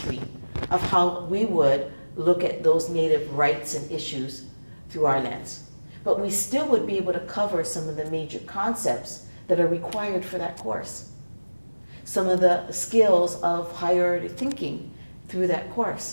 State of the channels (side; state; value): both; inverted; correlation -1.00